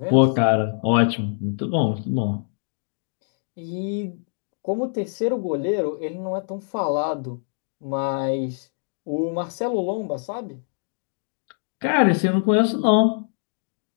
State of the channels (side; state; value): right; silent; digital silence